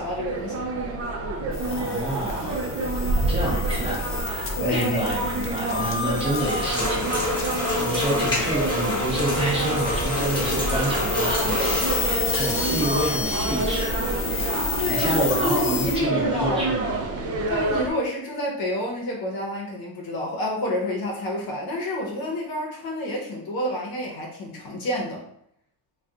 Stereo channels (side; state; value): both; normal; correlation 0.16